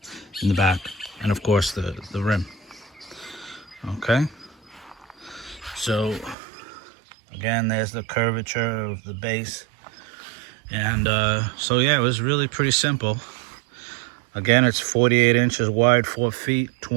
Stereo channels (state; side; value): drops out; left; at 6.4 s